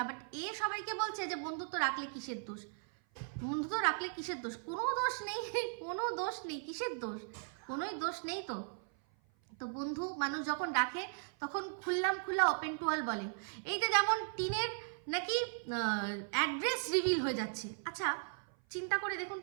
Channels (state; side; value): silent; left; 53 dB below the other